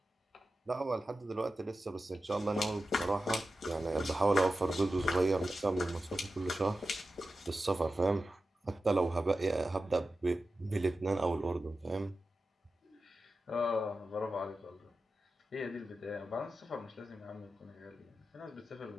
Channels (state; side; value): normal; both; correlation 0.93